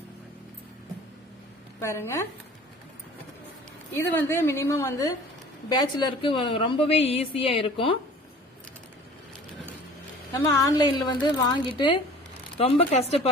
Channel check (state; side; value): normal; both; correlation 0.45